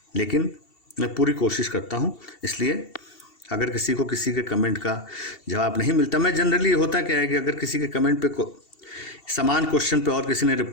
लेकिन मैं पूरी कोशिश करता हूँ। इसलिए अगर किसी के कमेंट का जवाब नहीं मिलता, मैं जनरली होता क्या है कि अगर किसी के कमेंट पे समान क्वेश्चन पे और किसी ने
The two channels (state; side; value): late; right; 2.7 ms